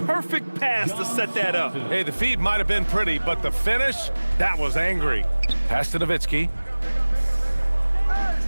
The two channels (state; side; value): inverted; both; correlation -1.00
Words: perfect pass to set that up. Hey, the feed might have been pretty, but the finish, that was angry. Pass to Nowitzki.